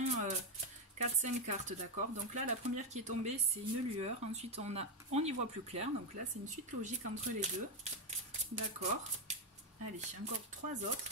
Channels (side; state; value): both; normal; correlation 0.06